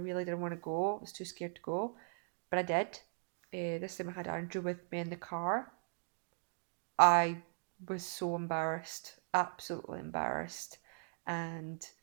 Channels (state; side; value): silent; left; digital silence